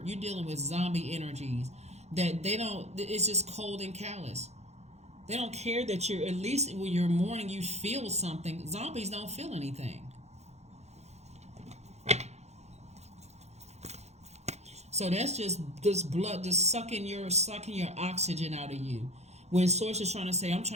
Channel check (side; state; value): left; late; 0.32 ms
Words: you're dealing with zombie energies that they don't. It's just cold and callous. They don't care that you're, at least when you're mourning, you feel something. Zombies don't feel anything. So that's just this blood just sucking your oxygen out of you. When Source is trying to say, I'm